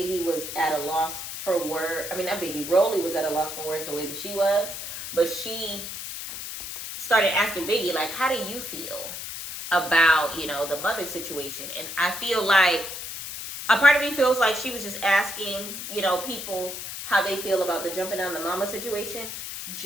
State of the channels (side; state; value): left; noise; hiss, 8 dB below the sound